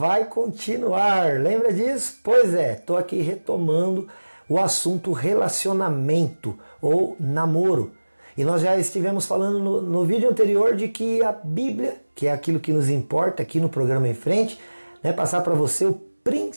continuar. Lembra disso? Pois é, estou aqui retomando o assunto relacionamento ou namoro. E nós já estivemos falando no vídeo anterior de que a Bíblia, que é aquilo que nos importa aqui no programa em frente, né, passar para você o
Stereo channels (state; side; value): inverted; both; correlation -1.00